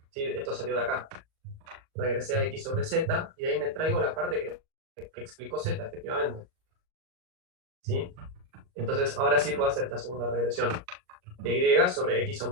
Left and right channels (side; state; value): left; late; 38 ms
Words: ¿Sí? Esto salió de acá. Regresé a X sobre Z y de ahí me traigo la parte que explicó Z, efectivamente. ¿Sí? Entonces, ahora sí puedo hacer esta segunda regresión de Y sobre X